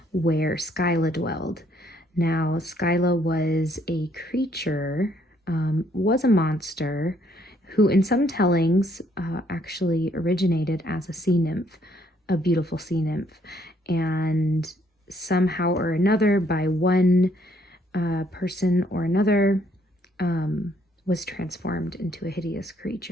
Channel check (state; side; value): normal; both; correlation 0.68